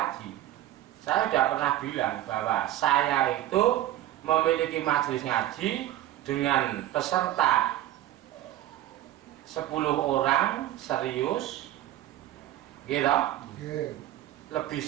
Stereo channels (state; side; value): quieter; left; 13.9 dB